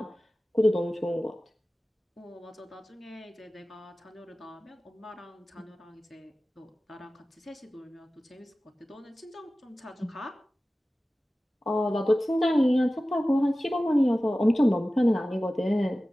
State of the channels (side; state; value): both; normal; correlation 0.96